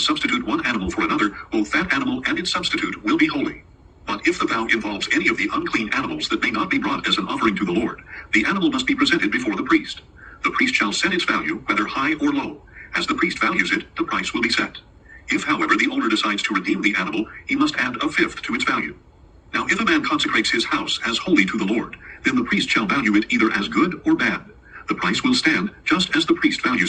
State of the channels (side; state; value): both; identical; correlation 1.00